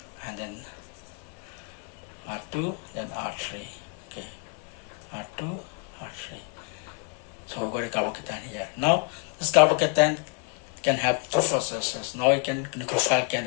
and then R2, then R3. Okay, R2, R3. So we got a carbocation here. Now this carbocation can have two processes. Now nucleophile can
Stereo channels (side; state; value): right; quieter; 33.5 dB